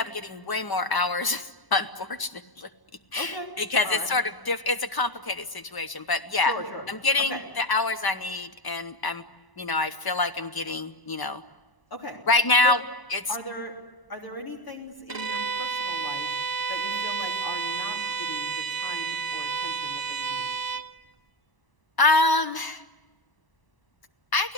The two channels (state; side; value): late; right; 1.0 ms